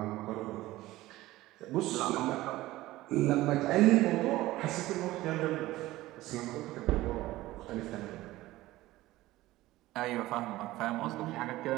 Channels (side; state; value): left; quieter; 17.2 dB